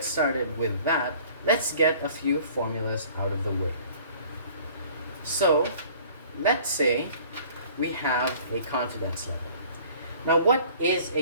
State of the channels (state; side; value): inverted; both; correlation -0.51